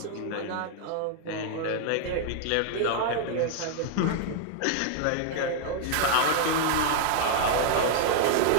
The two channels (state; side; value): different; both; correlation 0.00